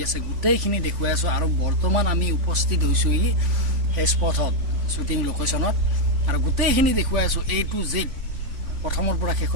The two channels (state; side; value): late; left; 3.5 ms